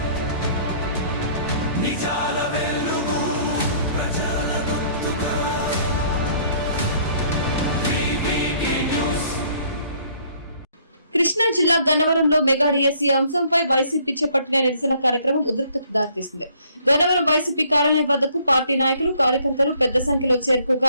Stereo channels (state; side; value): inverted; both; correlation -0.61